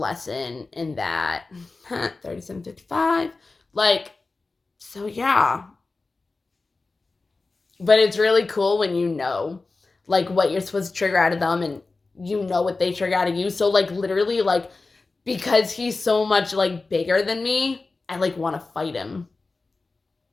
in that. 37:55. Like, so yeah. But it's really cool when you know, like, what you're supposed to trigger out of them and you know what they trigger out of you. So, like, literally, like, because he's so much, like, bigger than me, I, like, want to fight him.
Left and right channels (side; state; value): right; quieter; 3.7 dB